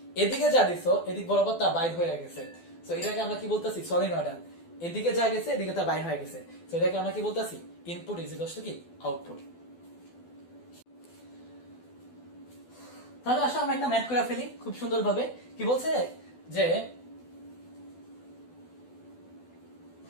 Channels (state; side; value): late; right; 12 ms